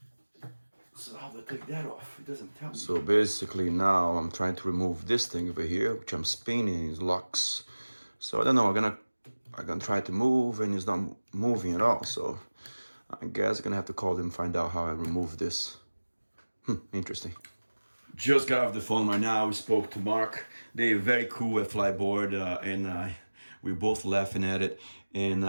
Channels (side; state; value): both; inverted; correlation -1.00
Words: So how do I take that off? It doesn't tell me. So basically now I'm trying to remove this thing over here, which I'm spinning, it locks. So I don't know, I'm gonna try to move and it's not moving at all. So I guess I'm gonna have to call them and find out how I remove this. Interesting. Just got off the phone right now. We spoke to Mark. They're very cool at Fliteboard, and we're both laughing at it. And